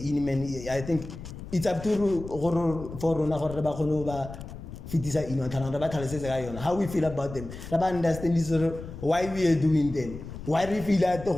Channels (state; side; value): noise; left; rumble, 12 dB below the sound